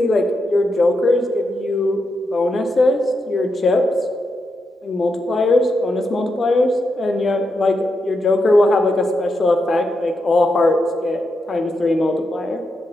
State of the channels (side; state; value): both; normal; correlation 0.85